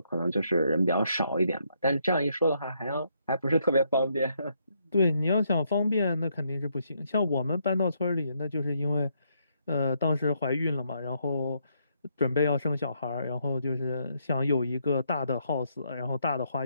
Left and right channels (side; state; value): both; inverted; correlation -0.75